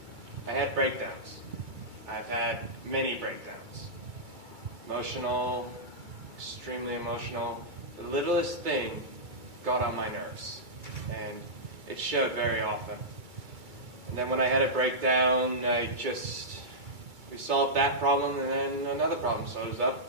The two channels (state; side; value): late; left; 2.3 ms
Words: I had breakdowns. I've had many breakdowns. Emotional, extremely emotional. The littlest thing got on my nerves, and it showed very often. And then when I had a breakdown, we solved that problem, and then another problem shows